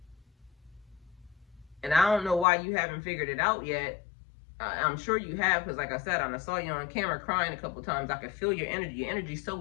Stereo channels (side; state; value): right; drops out; at 2.5 s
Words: And I don't know why you haven't figured it out yet. I'm sure you have, because like I said, I saw you on camera crying a couple times. I could feel your energy. Your energy's